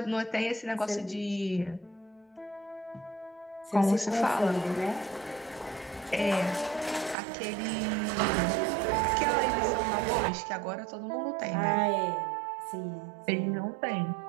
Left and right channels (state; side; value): drops out; left; at 7.2 s